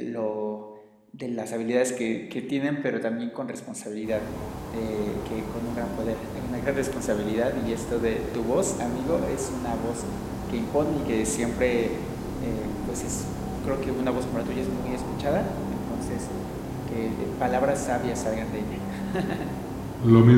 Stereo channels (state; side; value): identical; both; correlation 1.00